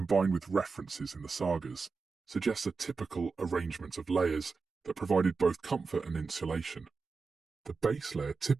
with references in the sagas, suggests a typical arrangement of layers that provided both comfort and insulation. The base layer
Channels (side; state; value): left; quieter; 4.6 dB